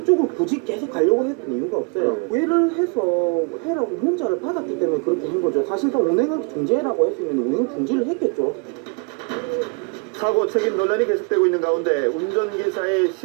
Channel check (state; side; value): quieter; left; 33.8 dB